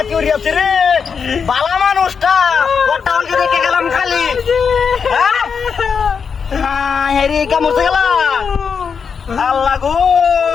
বালা মানুষটা ওটা আমাকে দেখে গেলাম খালি হেরি কামড়তে গেলাম আল্লাহ গো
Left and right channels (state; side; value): quieter; right; 6.2 dB